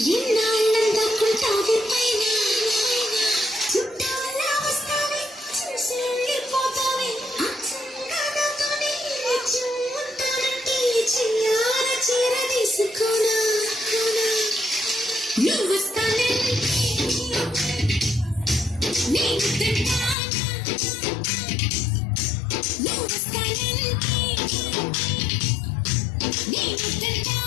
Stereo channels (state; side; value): drops out; right; at 20.2 s